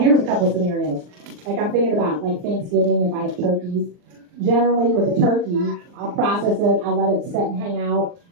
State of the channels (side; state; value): left; late; 39 ms